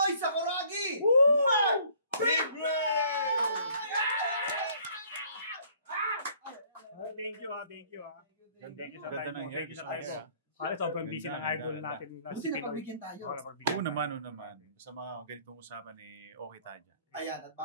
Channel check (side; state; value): both; inverted; correlation -0.58